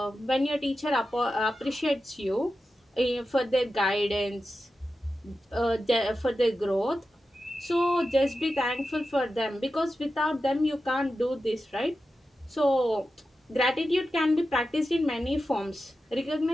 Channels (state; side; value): normal; both; correlation 0.91